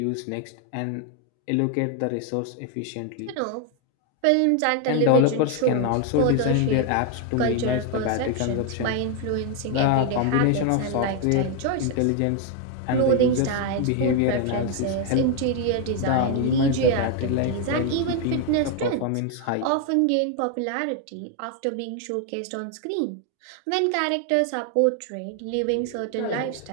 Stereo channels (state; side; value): different; both; correlation 0.01